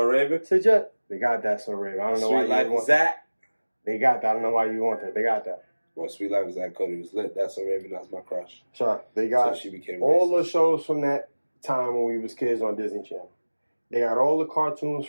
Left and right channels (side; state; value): both; inverted; correlation -1.00